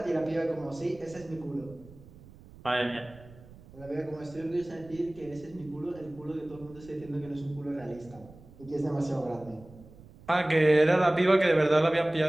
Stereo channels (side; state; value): right; noise; rumble, 21 dB below the sound